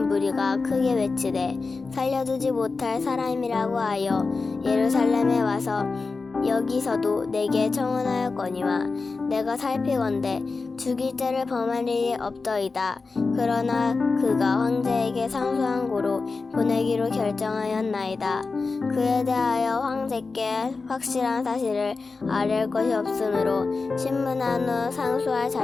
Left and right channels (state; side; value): quieter; right; 4.1 dB